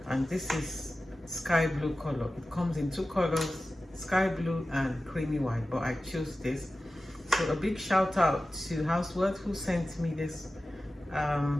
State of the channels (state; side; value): normal; both; correlation 0.95